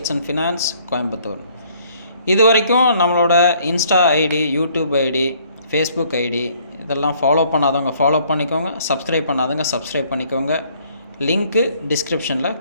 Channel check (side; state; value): both; inverted; correlation -0.62